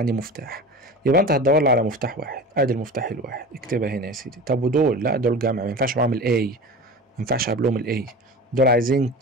مفتاح، يبقى انت هتدور لي على مفتاح واحد. ادي المفتاح الواحد، اكتبها هنا يا سيدي. طب ودول؟ لا دول جمع، ما ينفعش معاهم الاي، ما ينفعش قبلهم الاي. دول عايزين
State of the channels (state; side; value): normal; both; correlation 0.33